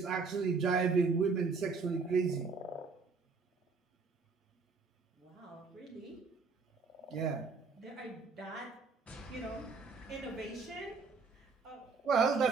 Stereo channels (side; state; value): left; quieter; 4.6 dB